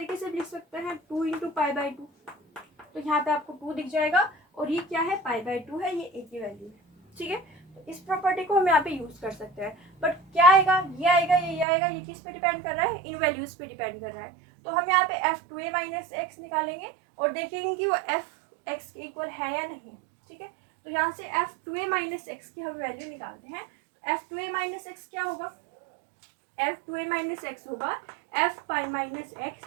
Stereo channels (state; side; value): drops out; left; at 11.7 s